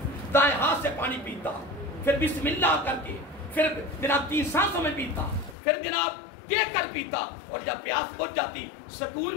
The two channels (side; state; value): right; drops out; at 5.6 s